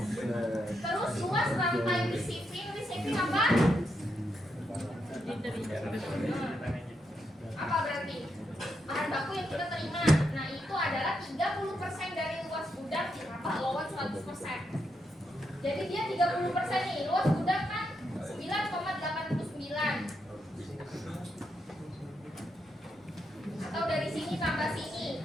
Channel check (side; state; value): both; normal; correlation 0.82